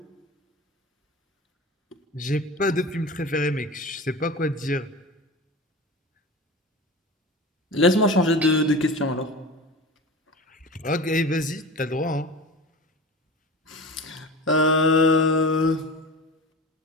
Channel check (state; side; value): normal; both; correlation 0.31